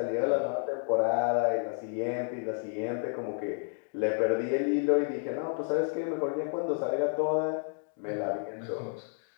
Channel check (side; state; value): right; silent; 57 dB below the other